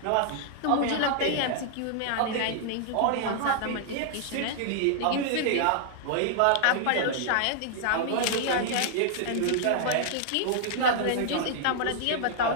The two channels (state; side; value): different; both; correlation -0.01